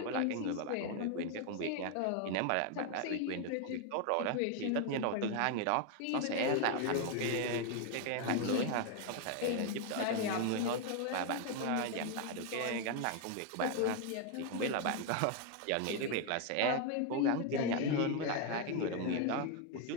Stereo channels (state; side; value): different; both; correlation 0.01